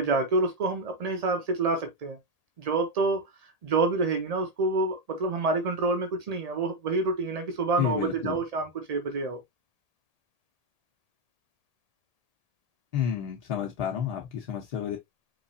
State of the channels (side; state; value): left; late; 1.8 ms